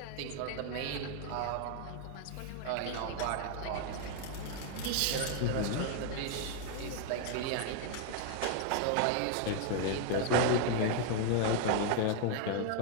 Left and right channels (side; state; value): both; different; correlation 0.00